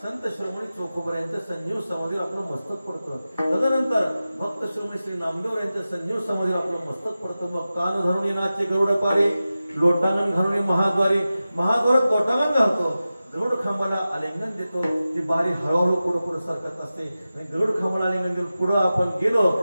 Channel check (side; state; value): both; inverted; correlation -0.94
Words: संत श्रोमणी चोखोबरा यांच्या संजीव समाधीवर आपलं मस्तक पडतं. तदनंतर भक्त श्रोमणी श्री नामदेव यांच्या संजीव समाधीवर आपलं मस्तक पडतं. मग कान धरून नाचे गरुड पारी, लोटांगण घालून महाद्वारी, महाद्वारात लोटांगण घालतो. गरुड खांबाला आलिंगन देतो. ती बारी हळूहळू पुढे पुढे सरकत असते. आणि गरुड खांबाला आलिंगन देऊन पुढे आपण गेलो